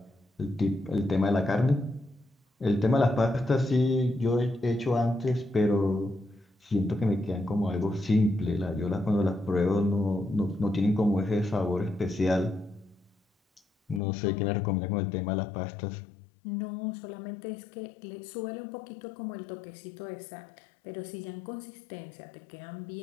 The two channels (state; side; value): drops out; right; at 14.0 s